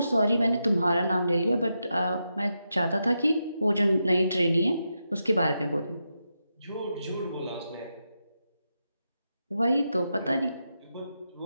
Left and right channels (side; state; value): both; inverted; correlation -0.86